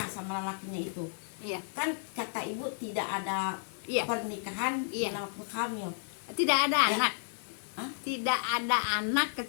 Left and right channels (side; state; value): right; silent; digital silence